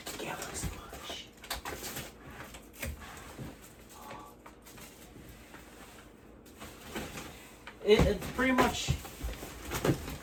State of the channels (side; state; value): both; identical; correlation 1.00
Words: Galaxy Watch. It's pretty much.